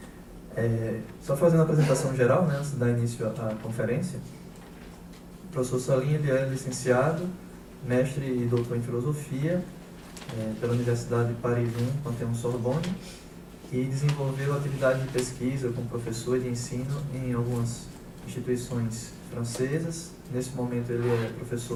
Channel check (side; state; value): both; identical; correlation 1.00